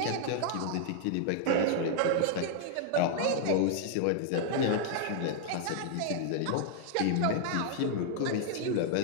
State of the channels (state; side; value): different; both; correlation 0.00